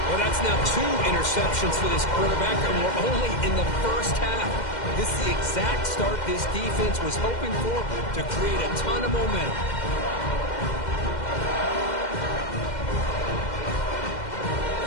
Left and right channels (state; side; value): late; right; 2.1 ms